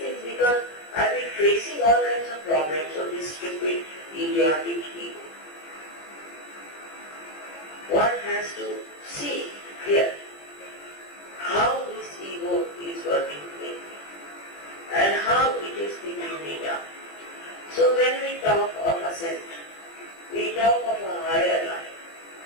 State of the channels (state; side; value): late; right; 20 ms